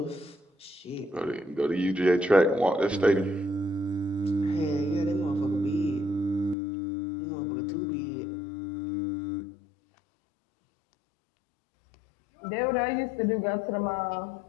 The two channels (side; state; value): right; drops out; at 6.6 s